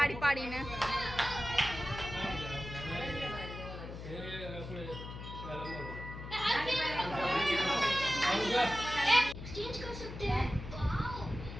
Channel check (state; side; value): noise; left; hum, 10 dB below the sound